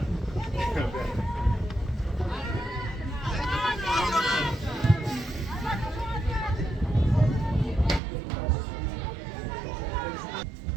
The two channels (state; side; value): drops out; left; at 8.0 s